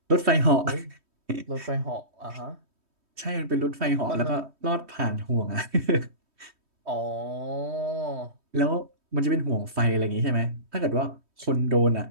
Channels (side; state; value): left; late; 3.2 ms